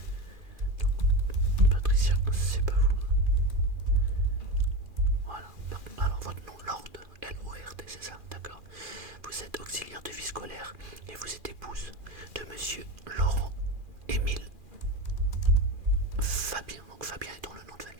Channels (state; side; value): late; left; 2.5 ms